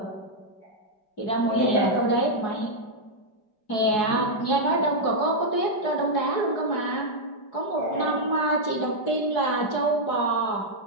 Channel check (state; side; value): late; right; 4.7 ms